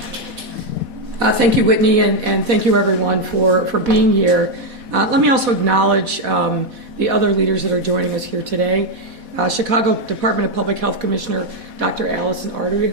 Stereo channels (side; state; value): left; late; 4.1 ms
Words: Thank you, Whitney, and thank you, everyone, for being here. Let me also acknowledge the other leaders that are joining us here today. Chicago Department of Public Health Commissioner Dr. Allison Artery,